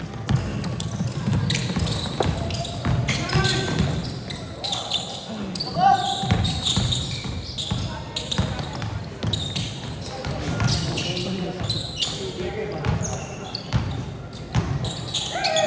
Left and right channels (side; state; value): both; identical; correlation 1.00